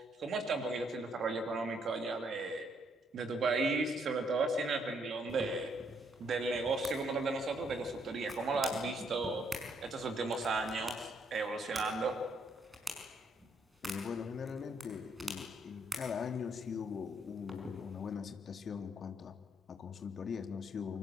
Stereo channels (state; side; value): normal; both; correlation 0.71